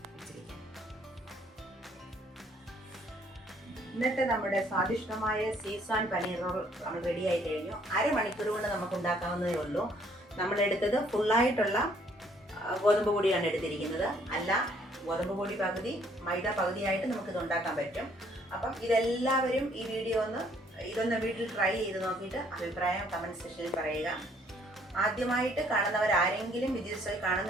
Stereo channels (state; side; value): normal; both; correlation 0.64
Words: വെച്ചിരിക്കാം. ഇന്നത്തെ നമ്മുടെ സ്വാദിഷ്ടമായ ഷെസ്വാൻ പനീർ റോൾ നമ്മൾ റെഡിയായി കഴിഞ്ഞു. അരമണിക്കൂർ കൊണ്ട് നമുക്ക് ഉണ്ടാക്കാവുന്നതേ ഉള്ളൂ. നമ്മളെടുത്തത് ഫുള്ളായിട്ടുള്ള ഗോതമ്പ് പൊടിയാണ് എടുത്തിരിക്കുന്നത്. അല്ല, ഗോതമ്പ് പൊടി പകുതി മൈദ പകുതിയായിട്ട് നമുക്കിത് ഉണ്ടാക്കാൻ പറ്റും. അപ്പം ഇതെല്ലാവരും ഈ വീഡിയോ ഇതൊന്ന് വീട്ടിൽ ട്രൈ ചെയ്ത് നോക്കിയിട്ട് അഭിപ്രായം കമൻറ്റ് സെക്ഷനിൽ പറയുക. ആദ്യമായിട്ട് കാണുന്നവരാരെങ്കിലും ബിജി റസോയ്